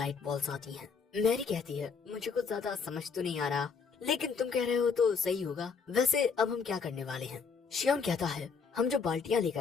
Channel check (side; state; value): right; quieter; 5.6 dB